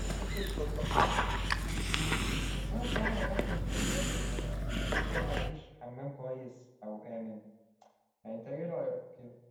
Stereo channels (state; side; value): identical; both; correlation 1.00